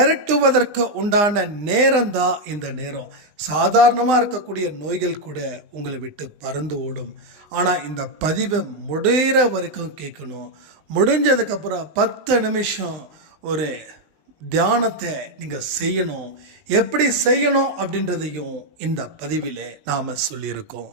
உண்டான நேரம் தான் இந்த நேரம். சாதாரணமாக இருக்கக்கூடிய நோய்கள் கூட உங்களை விட்டு பறந்து ஓடும். ஆனால் இந்த பதிவை முடிகிற வரைக்கும் கேட்கணும். முடிஞ்சதுக்கப்புறம் 10 நிமிஷம் ஒரு தியானத்தை நீங்கள் செய்யணும். எப்படி செய்யணும் அப்படின்றதையும் இந்த பதிவில் நாம்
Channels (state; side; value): late; left; 20 ms